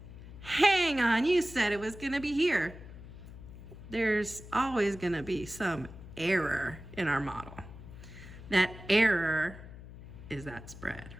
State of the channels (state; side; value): noise; left; hum, 15 dB below the sound